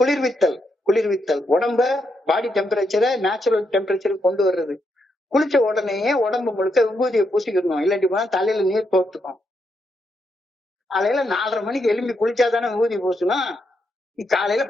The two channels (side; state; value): both; normal; correlation 0.80